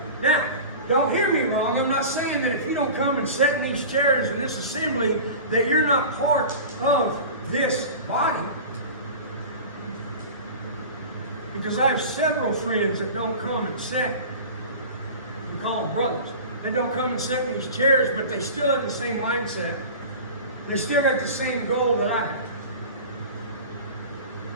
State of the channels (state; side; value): inverted; both; correlation -0.35